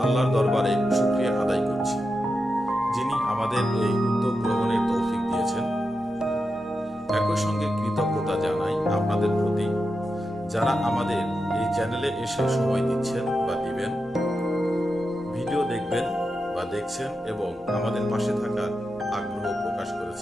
আল্লাহর দরবারে শুকরিয়া আদায় করছি, যিনি আমাদের এই উদ্যোগ গ্রহণের তৌফিক দিয়েছেন। একই সঙ্গে কৃতজ্ঞতা জানাই আপনাদের প্রতি, যারা আমাদের এই চ্যানেলে এসে সময় দিচ্ছেন বা দিবেন, ভিডিও দেখবেন বা দেখছেন এবং আমাদের পাশে থাকার আগ্রহ প্রকাশ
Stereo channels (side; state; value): both; normal; correlation 0.89